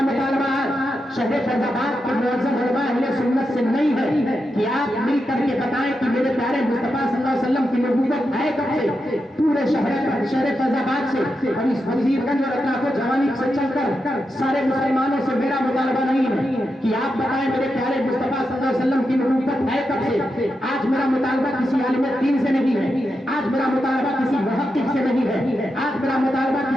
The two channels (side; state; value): both; normal; correlation 0.87